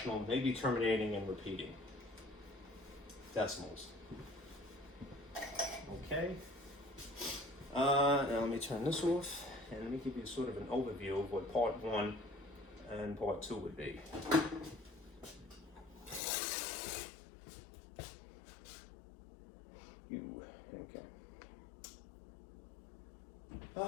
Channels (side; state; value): right; drops out; at 16.2 s